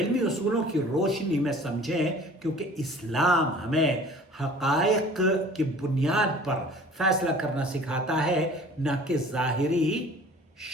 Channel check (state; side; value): normal; both; correlation 0.47